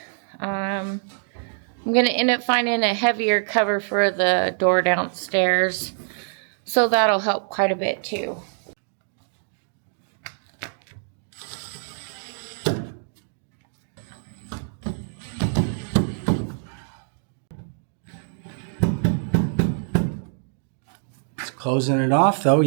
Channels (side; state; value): left; silent; digital silence